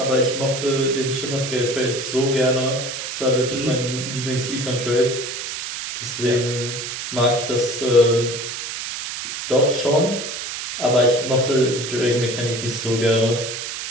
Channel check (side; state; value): right; noise; hiss, 6 dB below the sound